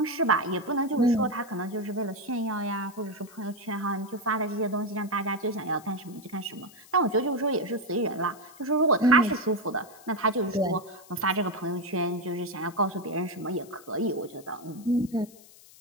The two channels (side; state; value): left; noise; hiss, 22 dB below the sound